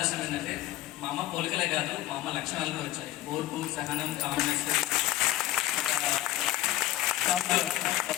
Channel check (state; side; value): quieter; right; 15.5 dB